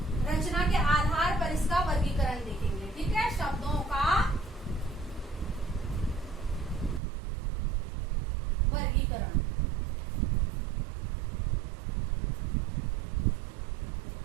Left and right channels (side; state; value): left; drops out; at 7.0 s